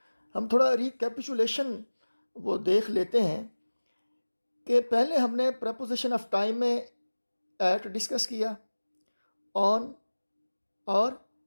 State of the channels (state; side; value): inverted; both; correlation -1.00